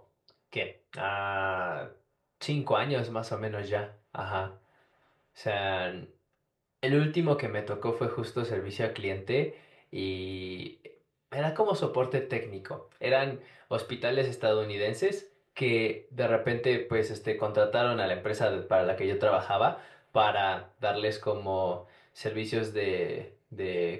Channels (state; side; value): identical; both; correlation 1.00